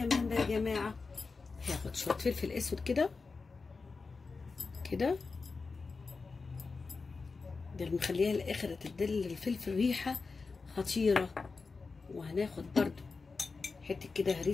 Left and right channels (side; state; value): right; quieter; 4.4 dB